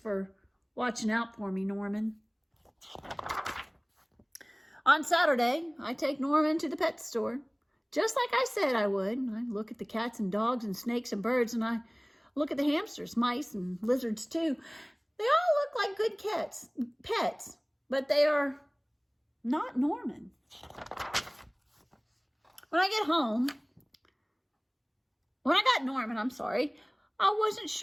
watching out for me, Norman. On Saturday, I take Norman to the pet store. Just like I said I would. I look at the cats and dogs and snakes and birds, and I look at the hamsters, mice, and lizards too. They all look like good pets, but they are not Norman. When I got Norman, I wasn't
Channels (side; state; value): both; identical; correlation 1.00